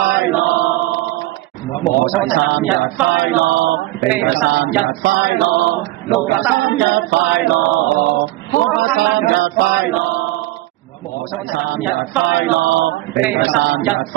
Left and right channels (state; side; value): quieter; left; 17.7 dB